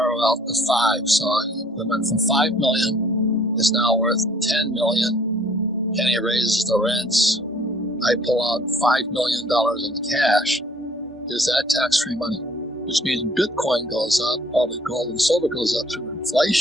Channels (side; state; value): both; normal; correlation 0.57